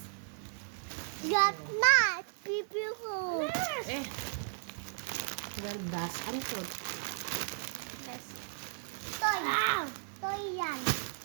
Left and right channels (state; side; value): silent; left; digital silence